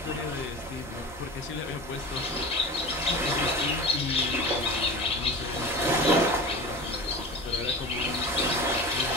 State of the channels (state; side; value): normal; both; correlation 0.32